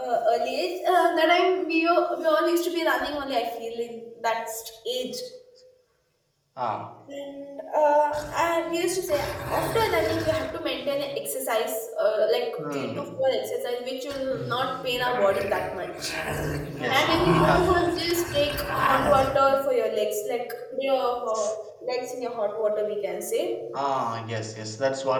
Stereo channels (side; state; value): both; identical; correlation 1.00